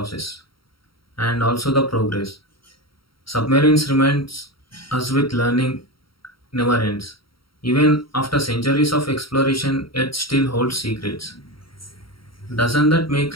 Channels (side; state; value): right; late; 0.74 ms